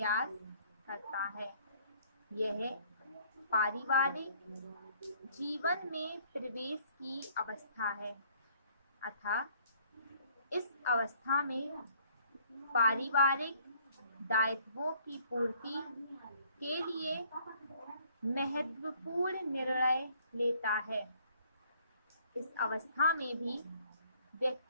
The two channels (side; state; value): both; inverted; correlation -0.61